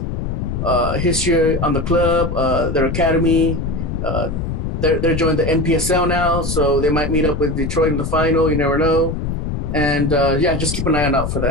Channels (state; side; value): noise; left; rumble, 3 dB below the sound